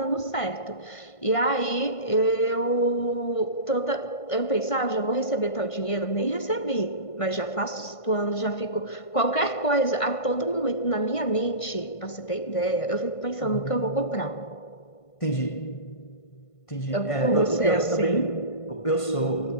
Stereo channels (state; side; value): late; right; 1.5 ms